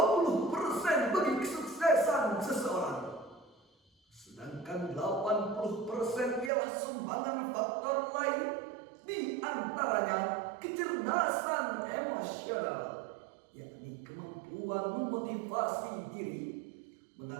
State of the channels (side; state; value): left; drops out; at 6.5 s